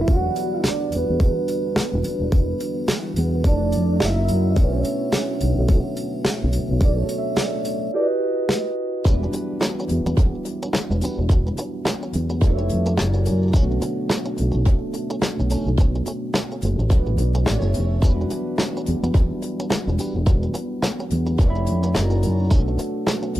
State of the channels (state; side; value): normal; both; correlation 0.91